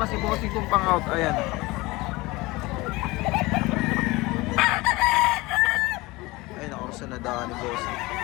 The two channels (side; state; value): right; quieter; 21.7 dB